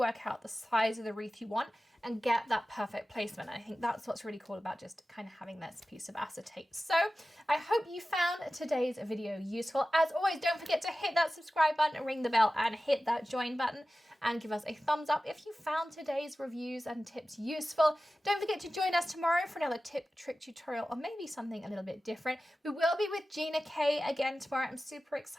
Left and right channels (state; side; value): normal; both; correlation 0.95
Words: out the size of the wreath you want and get that perfect placement. I think that's what's really cool about just kind of having this piece of acetate. So I hope you found today's video useful. As always, don't forget to hit that subscribe button, ring the bell, and hit that join button, and give us a thumbs up if you found today's reviews and tips useful. Don't forget to join us tomorrow for another tip, trick tutorial, or maybe something a little bit different. We will be with Gina K again tomorrow. I'm super